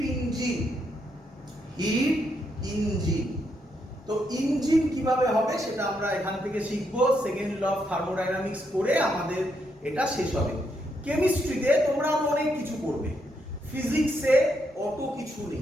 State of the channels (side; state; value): both; normal; correlation 0.78